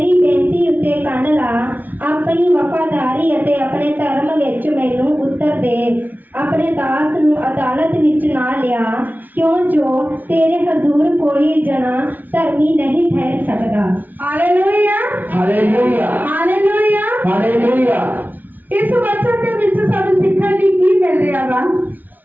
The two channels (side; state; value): left; late; 0.082 ms